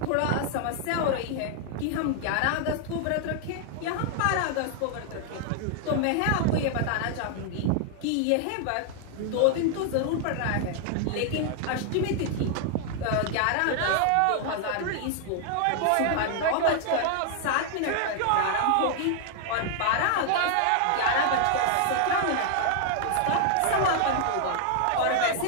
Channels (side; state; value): both; different; correlation 0.00